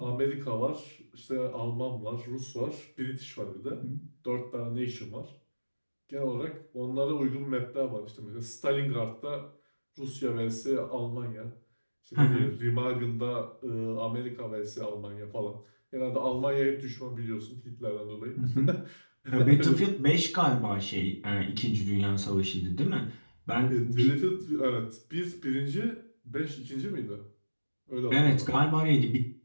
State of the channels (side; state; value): both; inverted; correlation -1.00